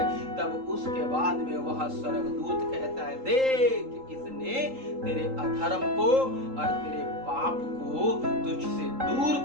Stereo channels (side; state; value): left; late; 3.8 ms